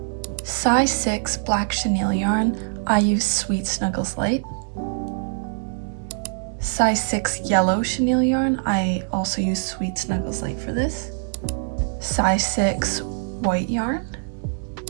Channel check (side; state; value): left; silent; 63 dB below the other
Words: size 6 black chenille yarn. I use Sweet Snuggles Light. Size 6 yellow chenille yarn. I also use Sweet Snuggles Light for this. Size 6 white yarn.